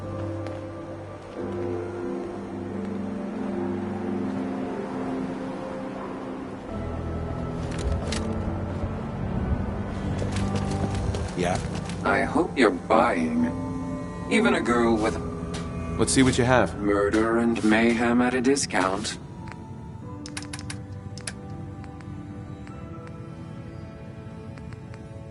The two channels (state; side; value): identical; both; correlation 1.00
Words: Yeah. I hope you're buying. Even a girl with Let's see what you have. murder and mayhem at a discount.